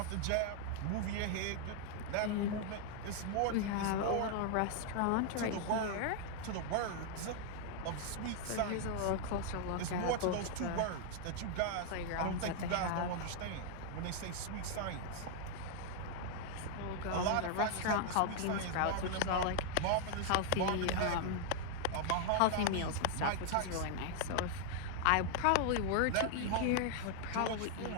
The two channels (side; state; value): both; different; correlation 0.00